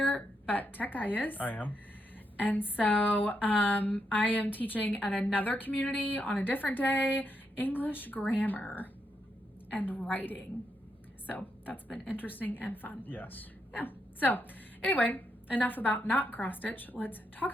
but Tech Guy is. I am. And so I am teaching at another community on a different day, English grammar and writing. So that's been interesting and fun. Yes. Yeah. So anyway, enough about not cross stitch. Let's talk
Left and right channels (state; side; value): normal; both; correlation 0.81